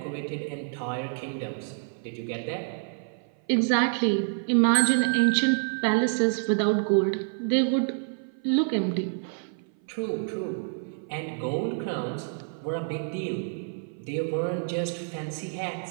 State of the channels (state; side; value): silent; left; 56 dB below the other